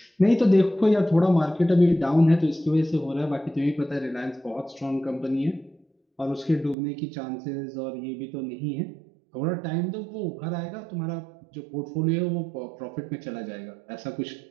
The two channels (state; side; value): drops out; left; at 6.8 s